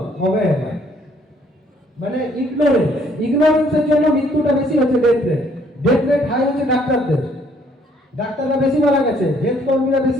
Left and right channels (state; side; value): normal; both; correlation 0.64